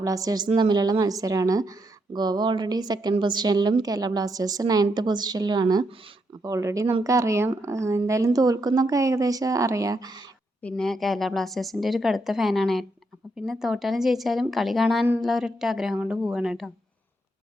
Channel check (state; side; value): normal; both; correlation 0.79